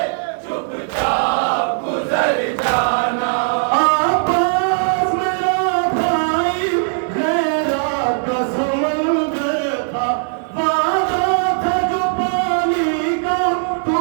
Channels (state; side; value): silent; left; digital silence